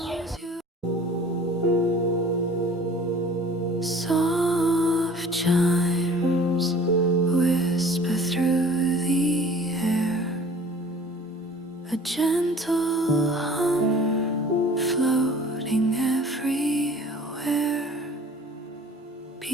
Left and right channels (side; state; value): both; normal; correlation 0.48